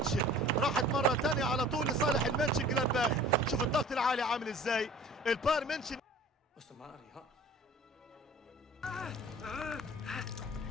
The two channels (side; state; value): both; normal; correlation 0.45